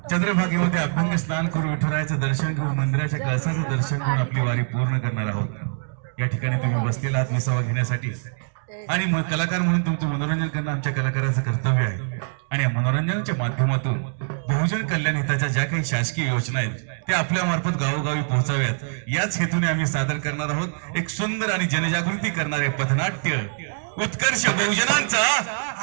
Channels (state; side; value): silent; left; digital silence